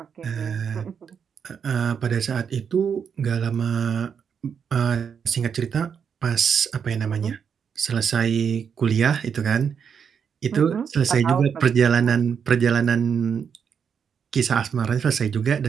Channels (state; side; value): quieter; left; 7.0 dB